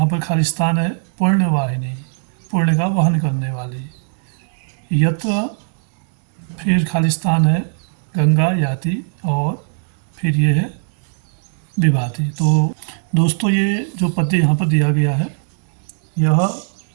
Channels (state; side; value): silent; left; digital silence